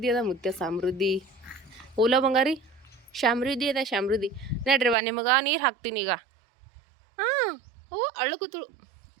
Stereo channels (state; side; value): drops out; left; at 5.0 s